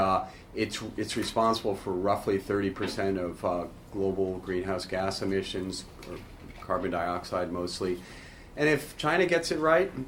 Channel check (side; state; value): both; identical; correlation 1.00